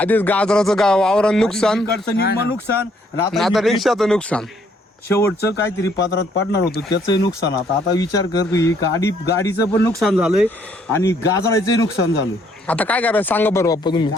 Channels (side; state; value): both; normal; correlation 0.67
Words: गाजराचं वावरात नुकसान इकडचं निम्म नुकसान आणि आणि आता आता ही रिक्षाचं नुकसान. शेवटचं काहीतरी पात्रात पडणार होतं त्याचंही नुकसान. आता विचार कर तू ही गाडीचं पण नुकसान झालंय आणि गाजराचंही नुकसान झालं. आता काय करायचं सांगा बरं बाप्पा तुम्ही.